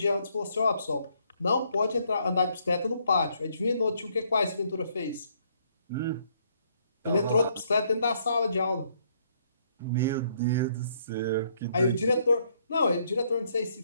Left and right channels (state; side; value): inverted; both; correlation -0.69